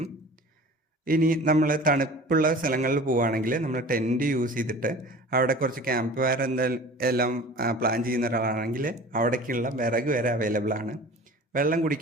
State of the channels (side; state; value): both; normal; correlation 0.41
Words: ഇനി നമ്മൾ തണുപ്പുള്ള സ്ഥലങ്ങളിൽ പോവുകയാണെങ്കിൽ നമ്മൾ ടെൻറ്റ് യൂസ് ചെയ്തിട്ട് അവിടെ കുറച്ച് ക്യാമ്പ് ഫയർ എല്ലാം പ്ലാൻ ചെയ്യുന്ന ഒരാളാണെങ്കിൽ അവിടേക്കുള്ള വിറക് വരെ അവൈലബിൾ ആണ്. വെള്ളം